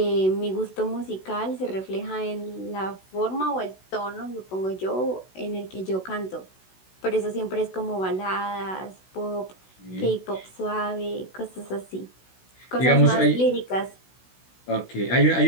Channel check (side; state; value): right; late; 16 ms